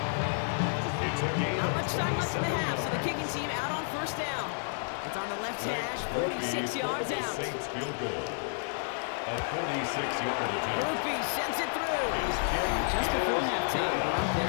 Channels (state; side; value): silent; right; digital silence